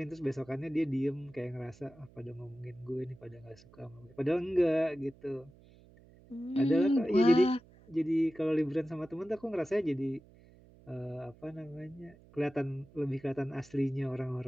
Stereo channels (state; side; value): noise; right; hum, 24 dB below the sound